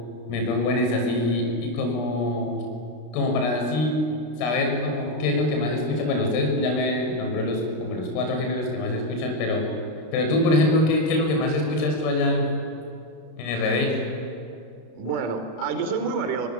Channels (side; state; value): right; late; 33 ms